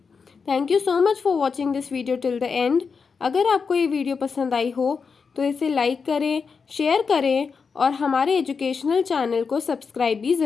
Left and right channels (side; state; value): right; quieter; 5.4 dB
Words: Thank you so much for watching this video till the end. अगर आपको ये वीडियो पसंद आई हो तो इसे लाइक करें, शेयर करें और हमारे एजुकेशनल चैनल को सब्सक्राइब भी